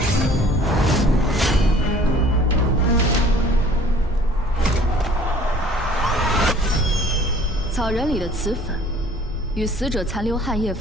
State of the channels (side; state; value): both; normal; correlation 0.52